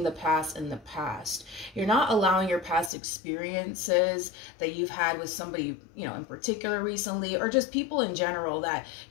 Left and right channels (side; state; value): right; drops out; at 2.9 s